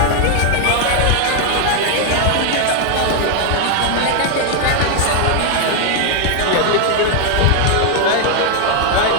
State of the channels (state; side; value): different; both; correlation 0.00